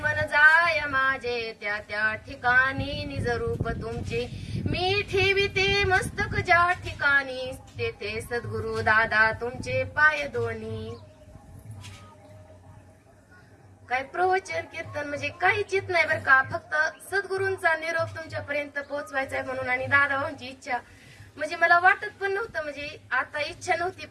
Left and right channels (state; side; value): identical; both; correlation 1.00